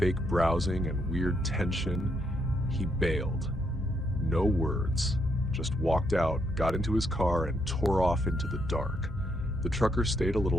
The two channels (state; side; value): normal; both; correlation 0.76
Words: browsing and weird tension, he bailed. No words, just walked out, got into his car, and tore off into the dark. The trucker stayed a